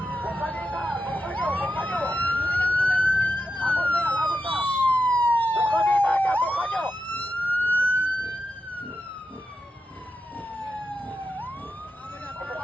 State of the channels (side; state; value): both; normal; correlation 0.88